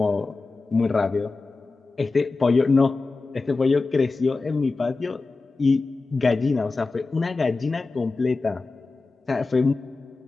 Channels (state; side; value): quieter; right; 3.7 dB